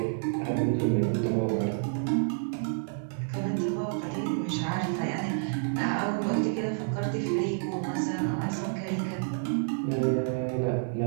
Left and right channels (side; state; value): left; silent; digital silence